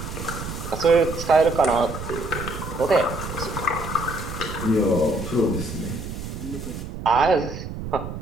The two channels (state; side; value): noise; right; rumble, 8 dB below the sound